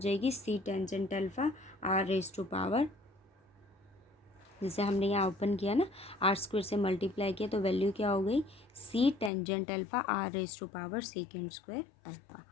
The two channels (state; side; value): drops out; right; at 9.3 s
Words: c tangent alpha r raise to power, जैसे हमने यहाँ ओपन किया ना, आर स्क्वेयर से मल्टीप्लाई किया तो वैल्यू क्या हो गई c tangent alpha r raise to power secant square alpha.